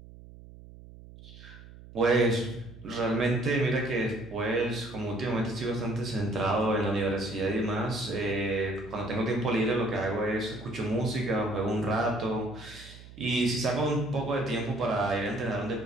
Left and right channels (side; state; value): right; noise; hum, 18 dB below the sound